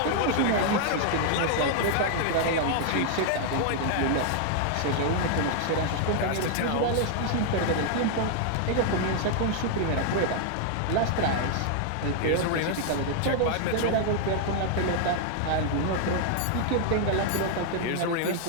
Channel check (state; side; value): different; both; correlation 0.00